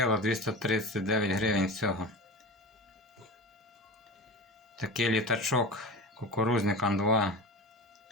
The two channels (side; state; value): both; normal; correlation 0.30